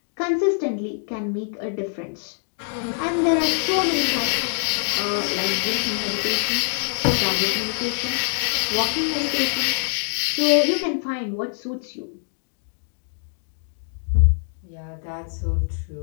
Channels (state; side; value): silent; right; digital silence